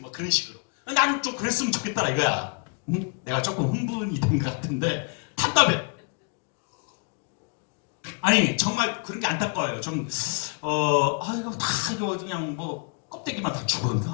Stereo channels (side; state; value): right; quieter; 38.6 dB